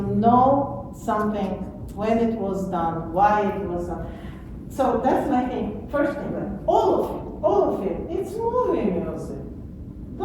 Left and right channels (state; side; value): identical; both; correlation 1.00